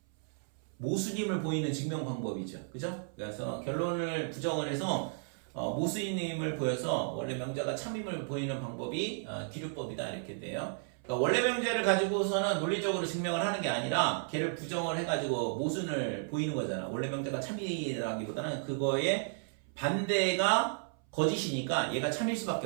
모순임을 보이는 증명 방법이죠. 그죠? 그래서 결론을 부정을 해서 모순임을 보여서 원래 명제가 참임을 보이는 방법이 귀류법이다 이렇게 돼요. 그러니까 원래 명제를 가지고서는 논리적으로 증명을 하는 게 아니라 걔를 부정을 해가지고 모순을 보이는 거잖아. 원래 명제가 참이라기보다는 그거의 반대가 거짓이니까 얘가 참일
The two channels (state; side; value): silent; left; 55 dB below the other